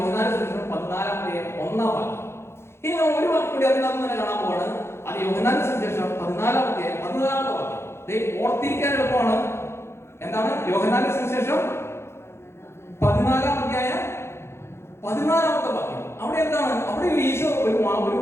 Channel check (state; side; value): late; right; 0.12 ms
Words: സുവിശേഷം 14-1 വാക്യം. ഇനി നമ്മൾ ഒരു വാക്യം കൂടി അതിനകത്ത് തന്നെ കാണാൻ പോവാണ്. അത് യോഹന്നാന്റെ സുവിശേഷം 14-14 വാക്യം. ഓർത്തിരിക്കാൻ എളുപ്പമാണ്. എന്താണ് യോഹന്നാന്റെ സുവിശേഷം 14-14 വാക്യം. അവിടെ എന്താണ്? അവിടെ ഈശോ